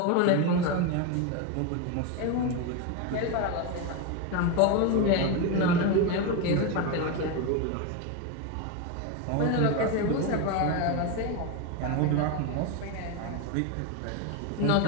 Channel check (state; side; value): different; both; correlation 0.03